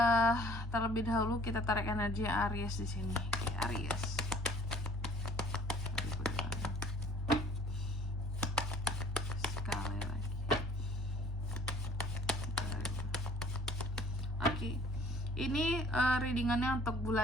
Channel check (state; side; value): normal; both; correlation 0.55